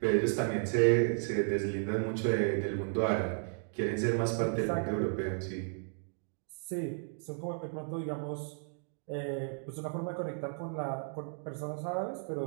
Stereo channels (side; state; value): left; silent; 55 dB below the other